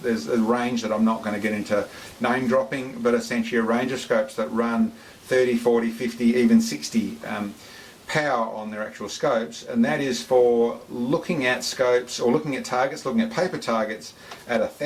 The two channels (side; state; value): both; identical; correlation 1.00